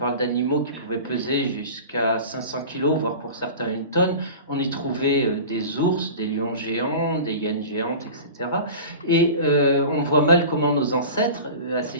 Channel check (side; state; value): both; inverted; correlation -0.36